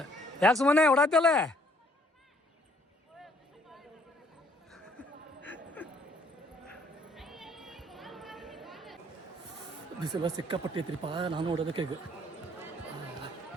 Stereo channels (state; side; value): normal; both; correlation 0.64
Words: ಯಾಕೆ ಸುಮ್ಮನೆ ಓಡಾತಲ್ಲ? ಬಿಸಿಲ ಸಿಕ್ಕಾಪಟ್ಟಿ ಐತ್ರಿಪ್ಪ. ನಾನು ನೋಡೋದಕ್ಕೆ ಈಗ